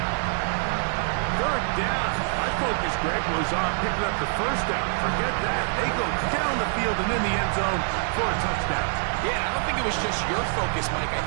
Third down. My focus, Greg, was on picking up the first down. Forget that. They go down the field and in the end zone for a touchdown. Yeah, I don't think it was just your focus, Mike. I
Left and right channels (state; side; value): silent; left; 58 dB below the other